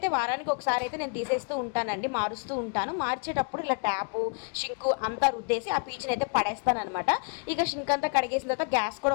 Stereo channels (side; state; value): right; quieter; 38.5 dB